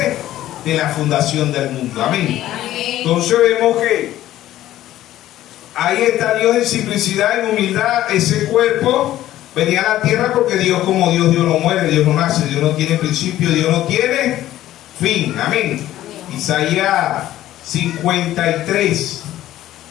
de la fundación del mundo. Amén. Entonces vemos que ahí está Dios en simplicidad, en humildad. Ese cuerpo venía a la tierra porque Dios como Dios, Dios no muere, Dios no nace, Dios no tiene principio, Dios no tiene fin. Amén. Isaías 53.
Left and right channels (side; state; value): right; quieter; 13.8 dB